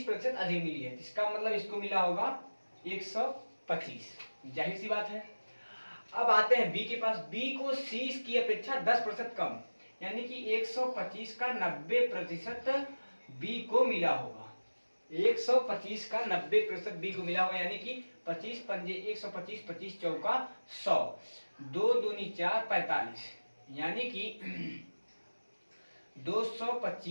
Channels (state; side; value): inverted; both; correlation -1.00